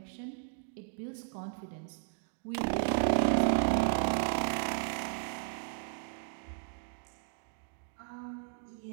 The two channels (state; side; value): silent; left; 54 dB below the other